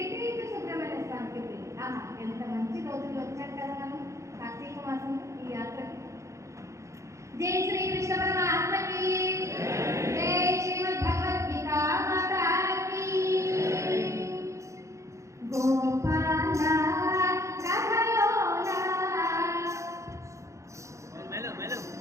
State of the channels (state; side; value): late; left; 0.15 ms